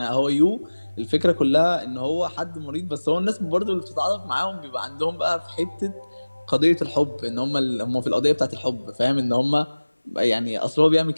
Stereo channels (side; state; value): both; inverted; correlation -1.00